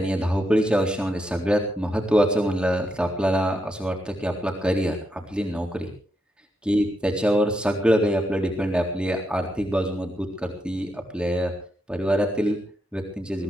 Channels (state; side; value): normal; both; correlation 0.82